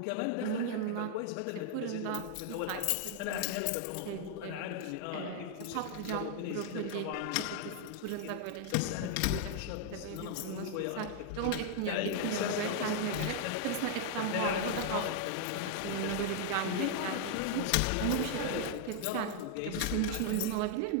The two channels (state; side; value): different; both; correlation 0.00